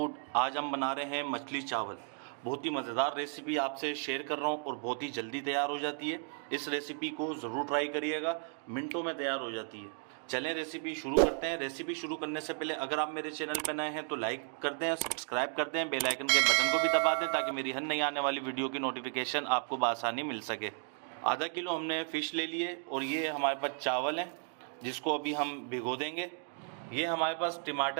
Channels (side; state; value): left; silent; 55 dB below the other